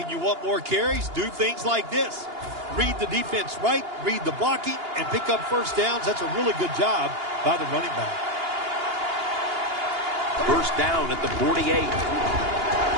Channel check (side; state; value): left; late; 2.8 ms